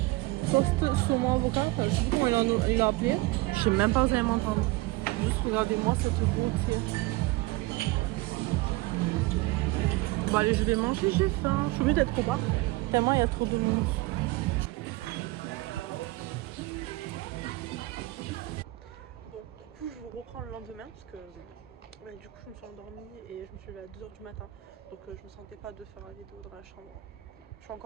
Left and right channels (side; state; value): left; quieter; 20.2 dB